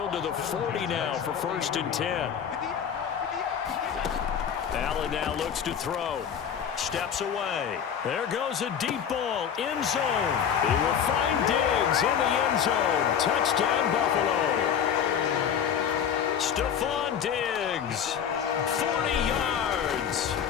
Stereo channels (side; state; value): right; quieter; 8.2 dB